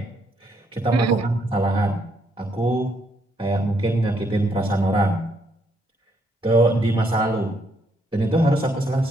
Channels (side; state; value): both; normal; correlation 0.73